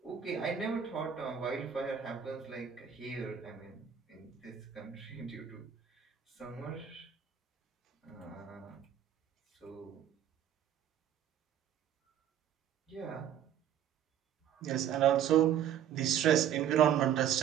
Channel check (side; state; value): left; quieter; 9.5 dB